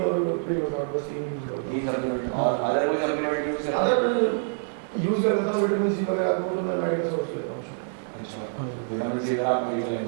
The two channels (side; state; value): left; silent; 61 dB below the other